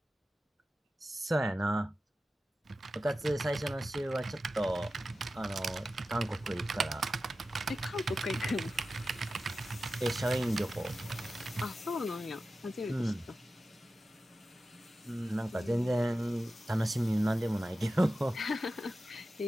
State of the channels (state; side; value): normal; both; correlation 0.93